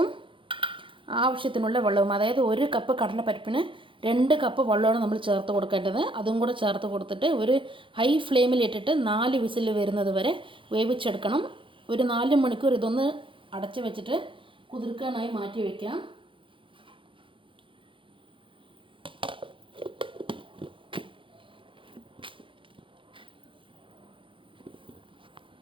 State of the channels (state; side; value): late; left; 0.25 ms